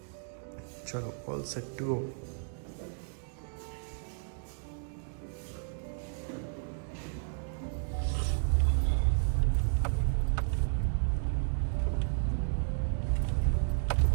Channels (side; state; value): left; silent; digital silence